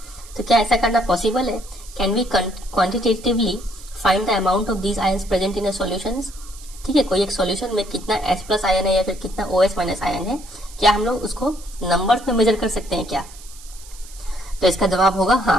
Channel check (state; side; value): noise; right; hiss, 19 dB below the sound